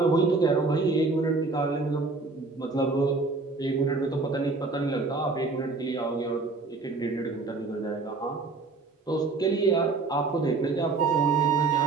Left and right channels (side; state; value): left; quieter; 3.9 dB